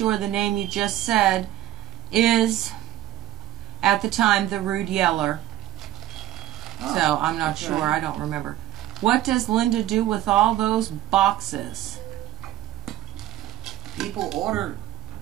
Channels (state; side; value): quieter; left; 14.2 dB